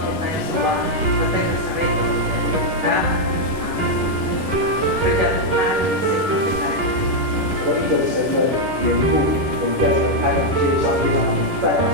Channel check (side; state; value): left; late; 11 ms